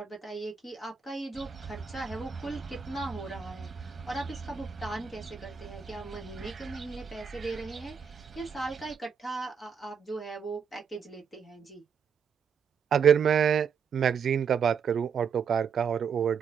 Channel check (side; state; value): left; quieter; 6.6 dB